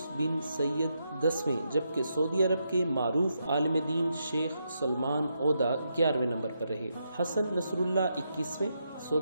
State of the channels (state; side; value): inverted; both; correlation -0.82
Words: بن سید 10ویں، جبکہ سعودی عرب کے معروف عالم دین شیخ سلمان عودہ 11ویں نمبر پر رہے۔ حسن نصر اللہ 21ویں،